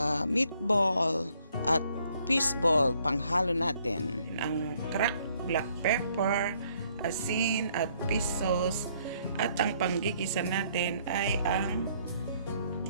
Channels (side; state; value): both; inverted; correlation -0.67